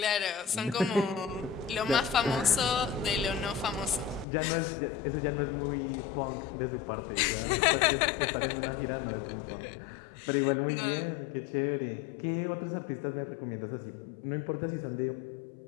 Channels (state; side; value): drops out; right; at 4.2 s